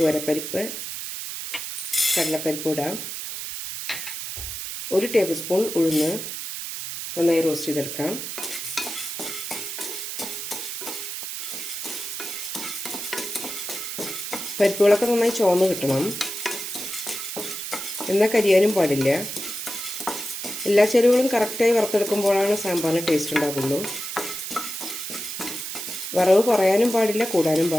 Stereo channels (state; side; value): noise; right; hiss, 6 dB below the sound